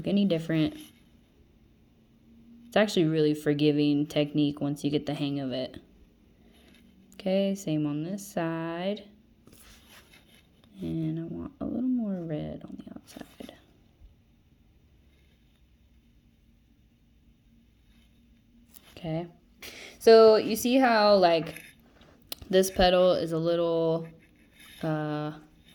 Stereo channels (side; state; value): both; identical; correlation 1.00